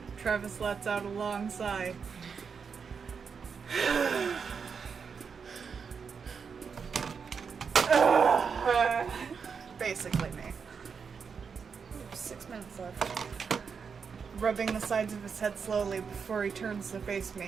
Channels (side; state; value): left; quieter; 6.0 dB